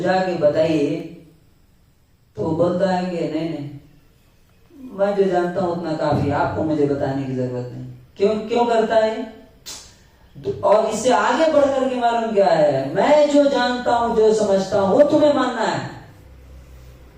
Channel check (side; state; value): both; identical; correlation 1.00